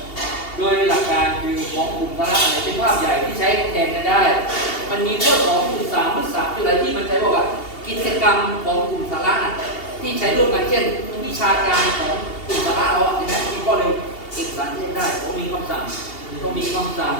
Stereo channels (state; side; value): late; right; 2.8 ms